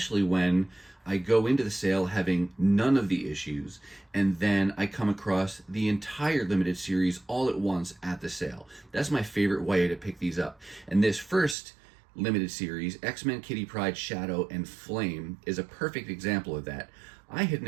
when I go into the sale having none of the issues, and then I come across the entire limited series all at once at the sale. That's my favorite way to pick these up. And this first limited series, X-Men Kitty Pryde Shadow and Flame, is a perfect example of that. I had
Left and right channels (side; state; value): left; drops out; at 11.6 s